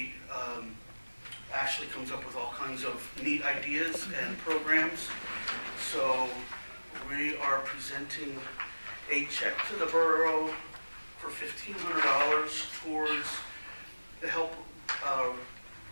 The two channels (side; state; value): both; inverted; correlation -1.00